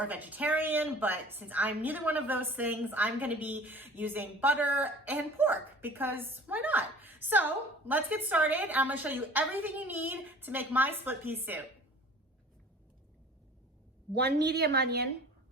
vegetarian, but since I'm neither one of those things, I'm gonna be using butter and pork because why not? So let's get started. I'm gonna show you everything you need to make my split pea soup. 1 medium onion,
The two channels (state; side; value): normal; both; correlation 0.45